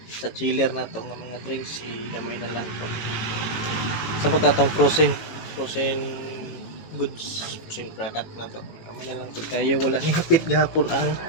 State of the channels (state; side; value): late; right; 18 ms